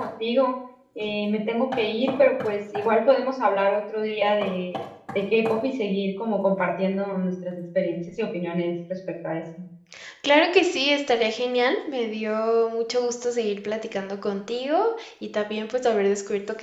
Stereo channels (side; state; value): both; identical; correlation 1.00